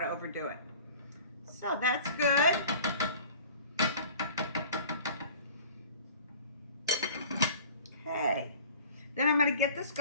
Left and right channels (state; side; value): inverted; both; correlation -0.45